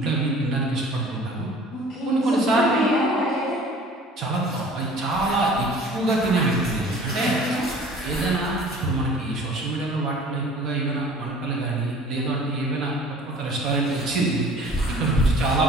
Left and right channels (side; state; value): both; normal; correlation 0.47